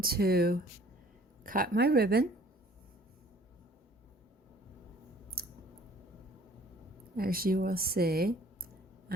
to cut my ribbon. As you will see,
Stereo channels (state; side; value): normal; both; correlation 0.54